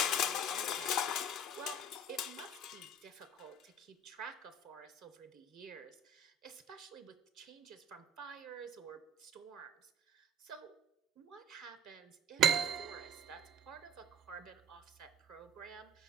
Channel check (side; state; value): both; normal; correlation 0.47